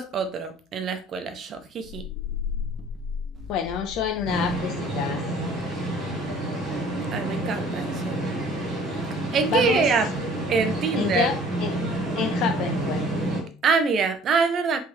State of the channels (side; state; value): both; normal; correlation 0.53